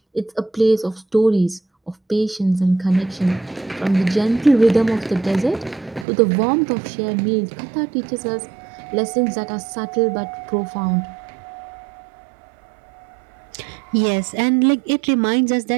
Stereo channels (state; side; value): drops out; left; at 6.1 s